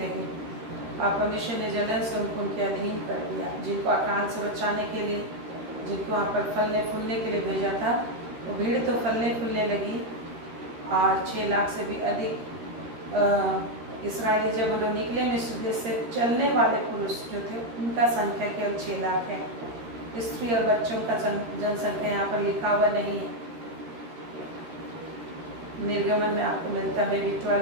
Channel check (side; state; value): left; late; 13 ms